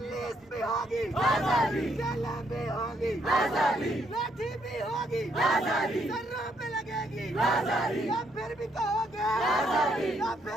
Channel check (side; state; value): both; normal; correlation 0.73